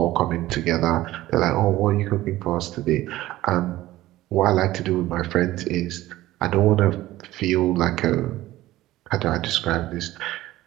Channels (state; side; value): quieter; left; 16.2 dB